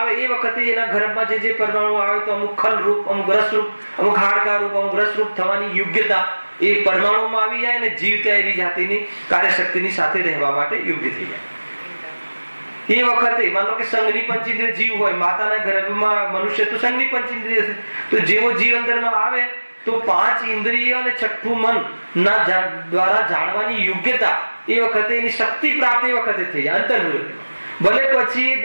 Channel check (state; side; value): inverted; both; correlation -1.00